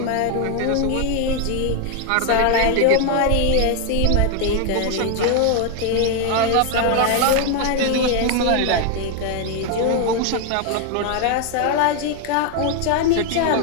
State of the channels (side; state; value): both; different; correlation 0.00